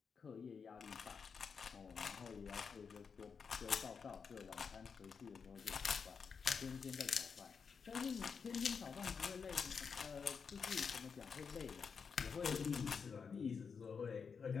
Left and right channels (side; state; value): right; quieter; 5.9 dB